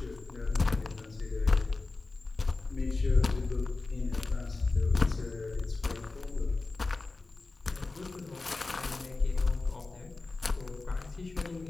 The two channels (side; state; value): right; quieter; 3.5 dB